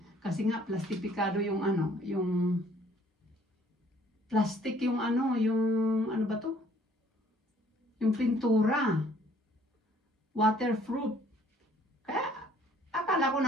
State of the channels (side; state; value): both; normal; correlation 0.59